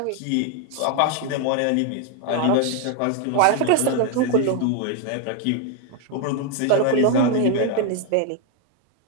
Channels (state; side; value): different; both; correlation 0.01